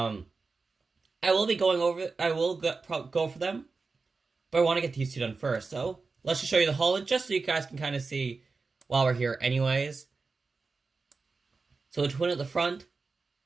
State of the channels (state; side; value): quieter; left; 4.2 dB